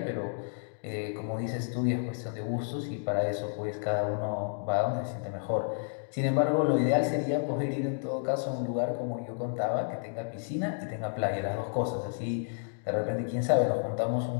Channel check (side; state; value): right; silent; digital silence